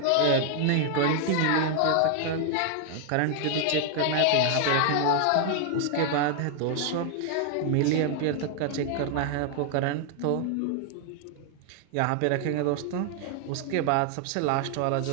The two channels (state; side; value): different; both; correlation 0.00